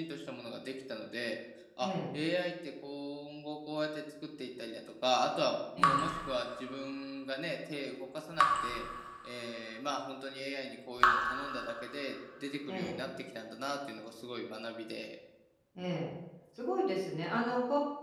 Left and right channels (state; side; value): identical; both; correlation 1.00